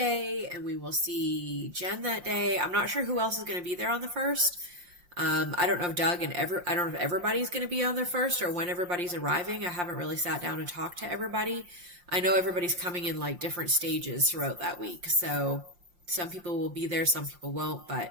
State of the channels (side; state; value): left; late; 5.7 ms